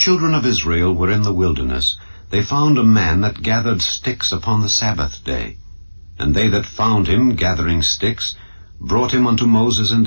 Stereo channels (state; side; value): inverted; both; correlation -1.00